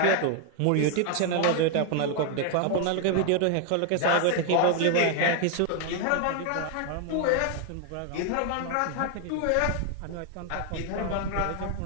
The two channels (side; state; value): both; different; correlation 0.01